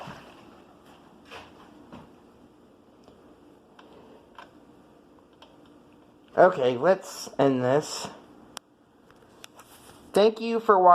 Okay, let's end this. Thank you for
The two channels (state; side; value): identical; both; correlation 1.00